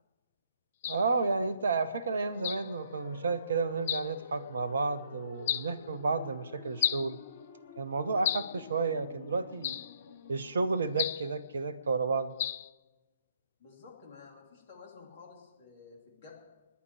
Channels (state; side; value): inverted; both; correlation -0.67